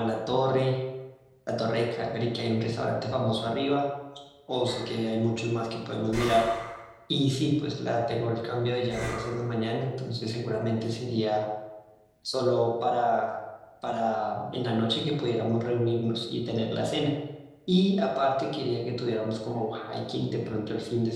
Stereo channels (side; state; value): both; identical; correlation 1.00